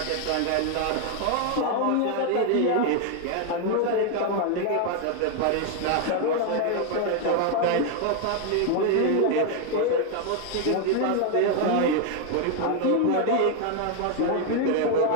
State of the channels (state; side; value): different; both; correlation 0.01